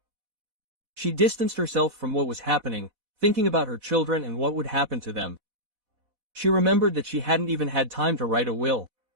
She distanced herself from what was happening, thinking about her children and what would happen to them. She remembered that she hadn't even had time to write a will.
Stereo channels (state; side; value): late; left; 4.1 ms